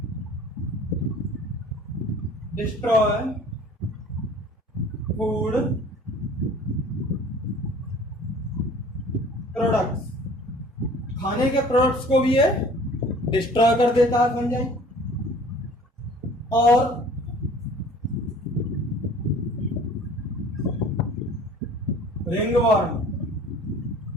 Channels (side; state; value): both; normal; correlation 0.48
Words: डिस्ट्रॉय फूड प्रोडक्ट्स। खाने के प्रोडक्ट्स को भी ये डिस्ट्रॉय कर देता है फंजाई। और ringworm